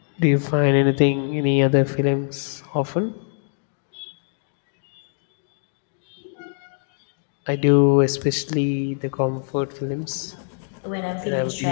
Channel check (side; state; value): right; silent; digital silence